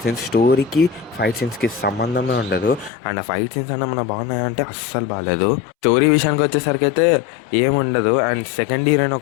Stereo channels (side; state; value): right; drops out; at 2.9 s